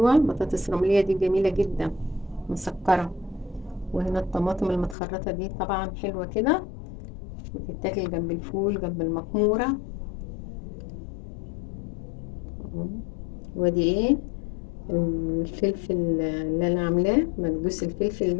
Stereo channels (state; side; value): drops out; right; at 5.0 s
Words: بطاطس رملية دي جميلة جدا مسكرة. وهنا الطماطم المتخرطة دي طبعا حلوة كده، بتتاكل جنب الفول جنب المكمورة. ودي ايه؟ الفلفل اللي انا عاملاه مكبوس الفلفل